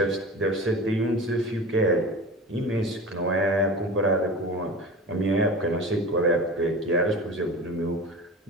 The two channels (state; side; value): normal; both; correlation 0.33